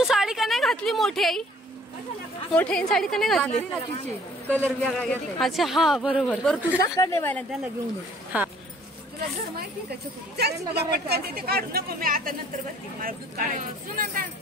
साडी का नाही घातली? मोठी आई मोठी साडी का नाही घातली? कलर वेगळा घेतला. अच्छा हा बरोबर. बरं तुझा कडे व्हायला त्याला घेऊन हा तुला घर माहिती का? तुला पटकन ते काढू नको. मी आता नंतर बसते. मला दूध काढायचं.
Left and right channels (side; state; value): both; normal; correlation 0.57